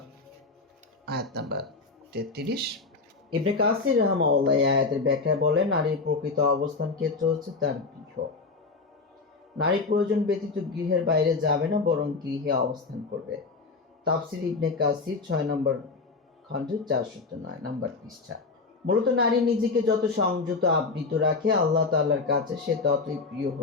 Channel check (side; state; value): right; quieter; 4.1 dB